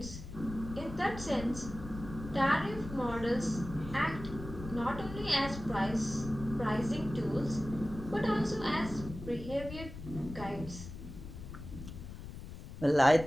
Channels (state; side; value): noise; left; rumble, 11 dB below the sound